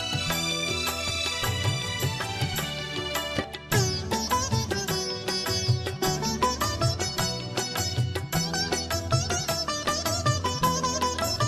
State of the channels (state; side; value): identical; both; correlation 1.00